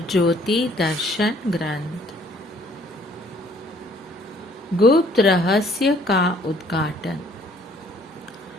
ज्योति दर्शन ग्रंथ गुप्त रहस्य का उद्घाटन।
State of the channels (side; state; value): both; normal; correlation 0.60